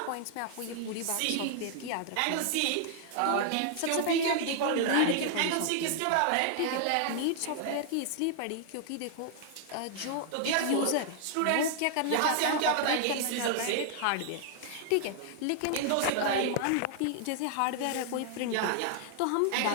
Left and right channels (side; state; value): both; different; correlation -0.01